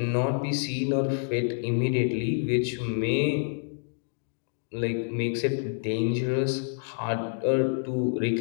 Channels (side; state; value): right; silent; digital silence